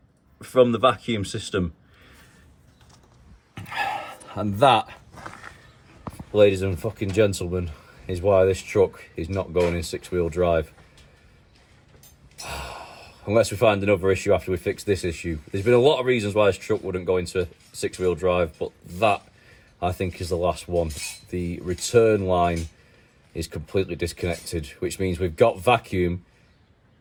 from the vacuum system. And that, ladies and fucking gentlemen, is why this truck is not going in 6-wheel drive. Unless we find another issue after we fix this issue. There's been a lot of reasons why this truck wouldn't go into 6-wheel drive, but that, I think, is the last one. The return line is completely disconnected, which means we've got vacuum,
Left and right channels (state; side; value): identical; both; correlation 1.00